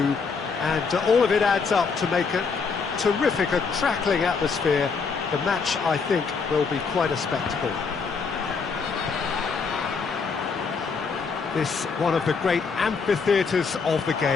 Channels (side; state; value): right; quieter; 5.2 dB